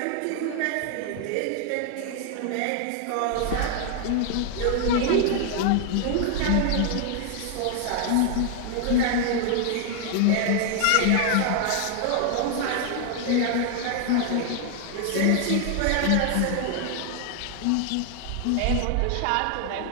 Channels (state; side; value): different; both; correlation 0.00